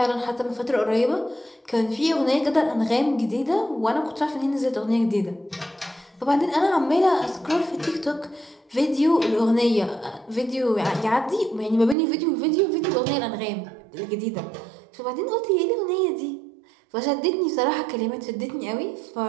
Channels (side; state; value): left; drops out; at 12.0 s